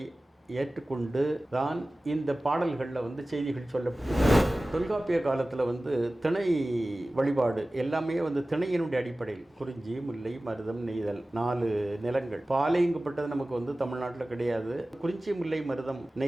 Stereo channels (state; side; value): normal; both; correlation 0.97